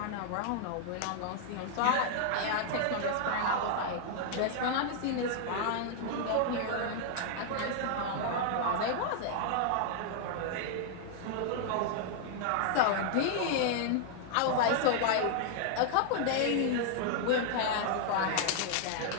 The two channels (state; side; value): different; both; correlation -0.01